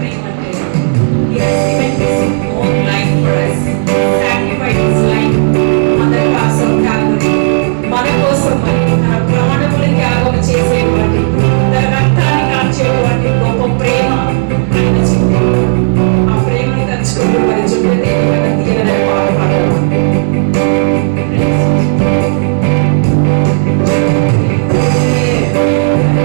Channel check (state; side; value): silent; left; digital silence